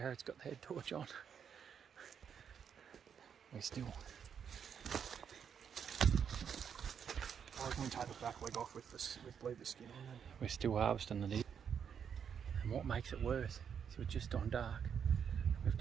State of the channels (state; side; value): quieter; left; 7.6 dB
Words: got the head torch on. We're still. I reckon we take the back leg off with leave the skin on. We're still harvesting the deer. And what makes it worse is we're just on dark. We've